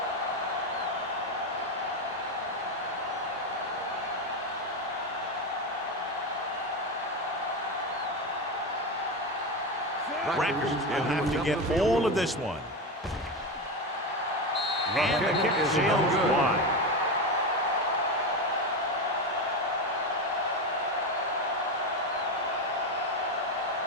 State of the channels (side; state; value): both; normal; correlation 0.16